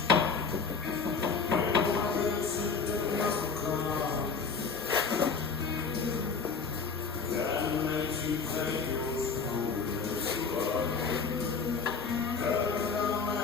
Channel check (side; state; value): right; quieter; 5.1 dB